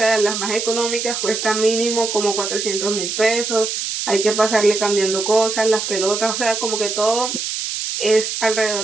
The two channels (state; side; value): noise; right; hiss, 3 dB below the sound